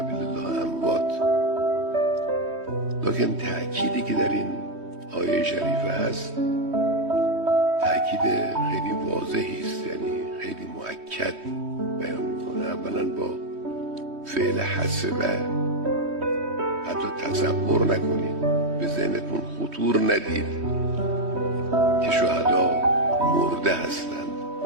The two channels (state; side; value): late; left; 3.2 ms